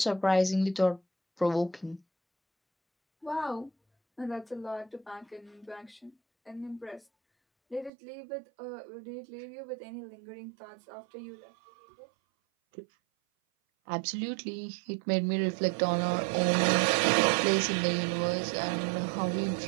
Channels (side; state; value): left; drops out; at 7.9 s